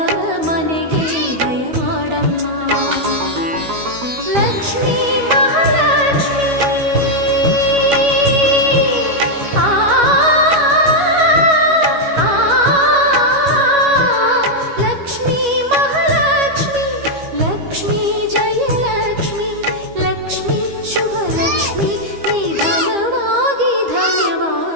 ಮನೆಗೆ ದಯ ಮಾಡಮ್ಮ. ಲಕ್ಷ್ಮೀ ಮಹಾಲಕ್ಷ್ಮೀ ಲಕ್ಷ್ಮೀ ಮಹಾಲಕ್ಷ್ಮಿ, ಲಕ್ಷ್ಮೀ ಜಯಲಕ್ಷ್ಮಿ, ಲಕ್ಷ್ಮೀ ಶುಭಲಕ್ಷ್ಮಿ, ನಿಧಾನವಾಗಿ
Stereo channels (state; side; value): late; left; 13 ms